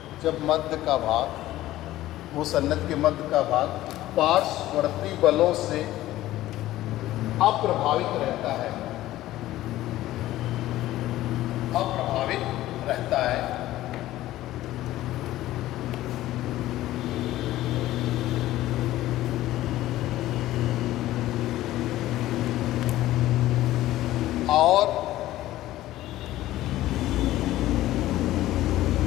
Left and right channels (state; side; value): quieter; right; 15.2 dB